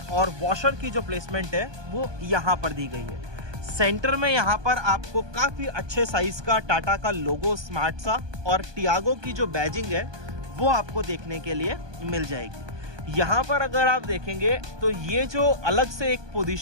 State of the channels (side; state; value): left; late; 1.2 ms